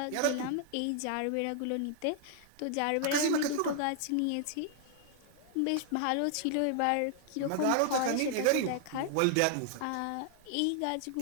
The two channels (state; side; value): different; both; correlation 0.00